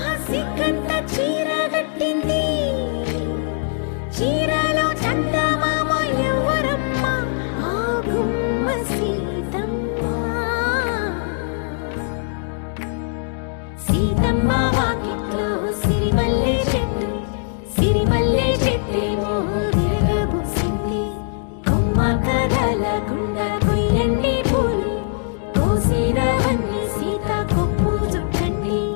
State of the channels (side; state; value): right; silent; digital silence